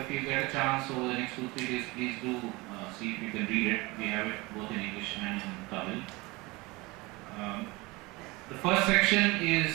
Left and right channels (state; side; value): quieter; left; 23.4 dB